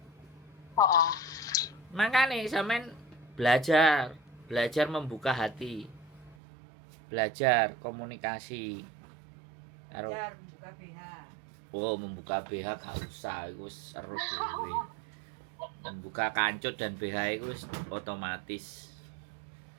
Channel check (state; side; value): drops out; left; at 6.4 s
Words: Heeh. Makane sampean belajar membuka hati. Belajar komunikasi. Karo buka BH. oh, membuka BH gak usah, iku wis seru dhewe. Membuka kancut dan BH iku wis otomatis.